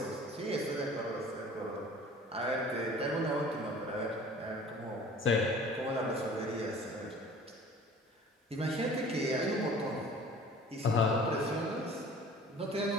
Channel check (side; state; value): both; normal; correlation 0.46